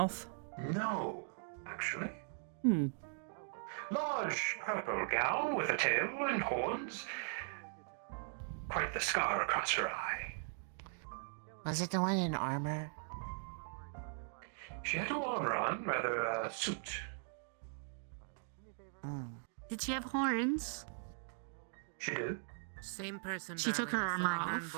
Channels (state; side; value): silent; left; digital silence